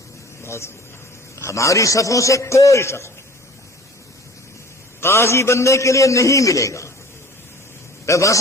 ہماری صفوں سے کوئی شخص قاضی بننے کے لیے نہیں ملے گا. میں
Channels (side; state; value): both; normal; correlation 0.46